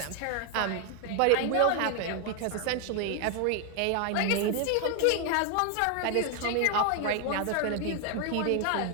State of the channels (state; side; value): different; both; correlation 0.01